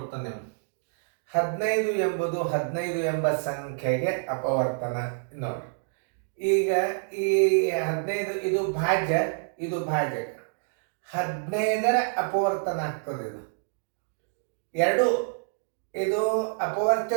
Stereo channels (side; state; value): left; silent; digital silence